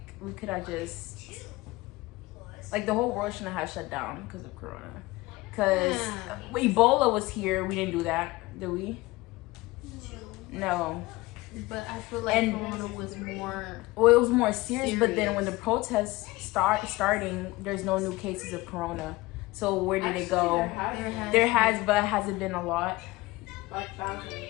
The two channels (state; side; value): quieter; right; 20.7 dB